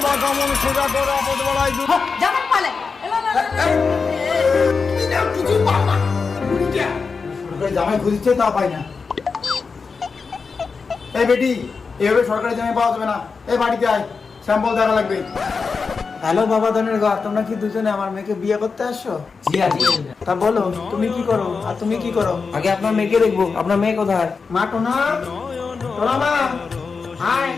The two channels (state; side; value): quieter; right; 4.9 dB